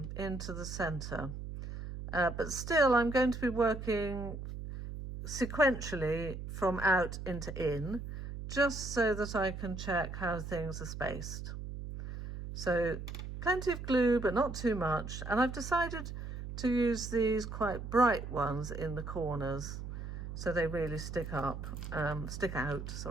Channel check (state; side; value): noise; right; hum, 8 dB below the sound